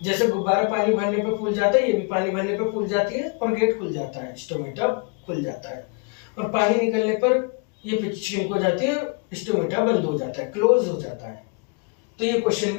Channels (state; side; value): quieter; right; 35.0 dB